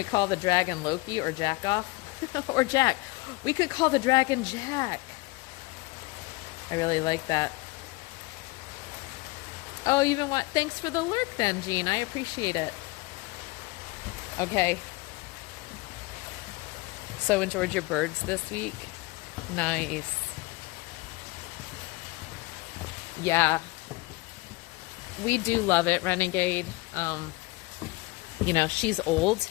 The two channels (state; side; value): quieter; right; 23.5 dB